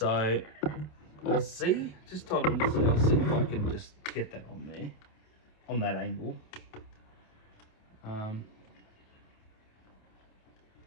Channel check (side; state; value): right; late; 27 ms